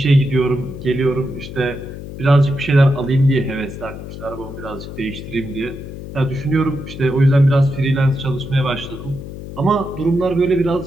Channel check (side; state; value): left; noise; hum, 11 dB below the sound